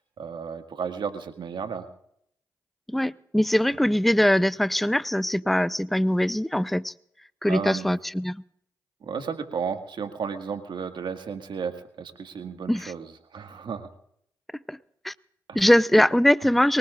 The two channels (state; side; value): normal; both; correlation 0.96